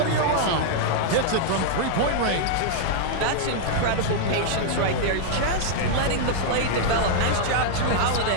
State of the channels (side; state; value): both; different; correlation -0.01